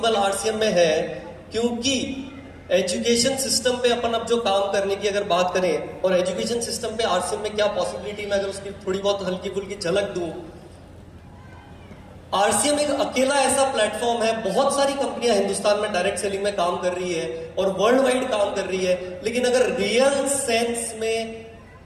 आरसीएम में है क्योंकि एजुकेशन सिस्टम पे अपन अब जो काम करने की अगर बात करें, और एजुकेशन सिस्टम पे आरसीएम में क्या पॉसिबिलिटी, मैं अगर उसकी थोड़ी बहुत हल्की फुल्की झलक दूं, आरसीएम एक अकेला ऐसा प्लेटफॉर्म है। बहुत सारी कंपनियां हिंदुस्तान में डायरेक्ट सेलिंग में काम कर रही है और वर्ल्ड वाइड काम कर रही है, लेकिन अगर रियल सेंस में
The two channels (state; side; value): identical; both; correlation 1.00